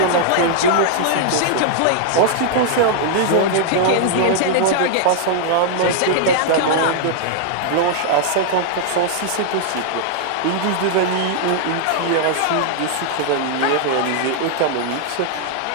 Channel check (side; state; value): both; different; correlation -0.01